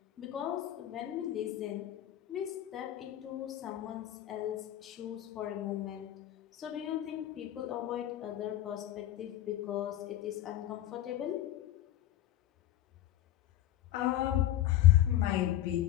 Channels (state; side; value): quieter; right; 13.0 dB